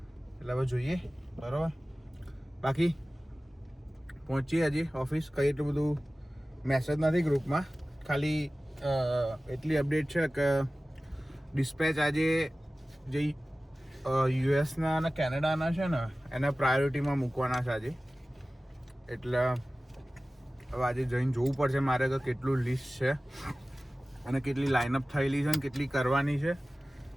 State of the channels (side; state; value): both; normal; correlation 0.97